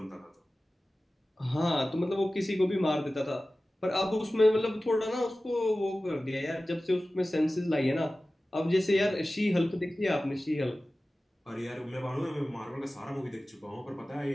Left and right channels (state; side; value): normal; both; correlation 0.96